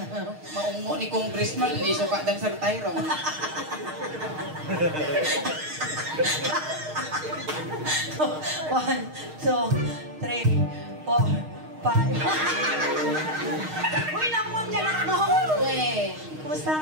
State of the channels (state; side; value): late; left; 6.4 ms